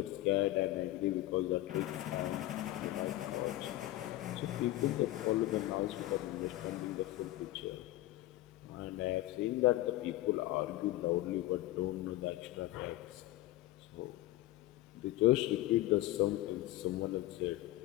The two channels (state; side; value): quieter; right; 16.3 dB